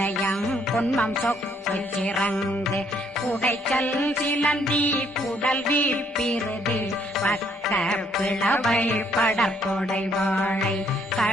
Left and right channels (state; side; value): normal; both; correlation 0.68